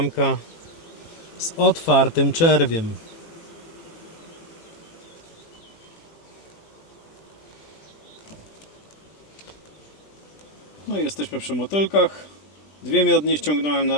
z otwartym czerwiem. No i jesteśmy przy motylkach. Dwie miodnie ściągnąłem na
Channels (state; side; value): late; right; 20 ms